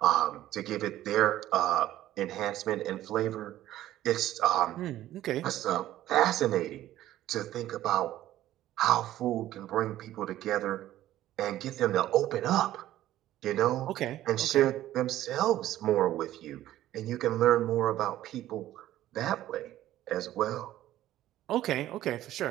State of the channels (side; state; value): left; quieter; 13.8 dB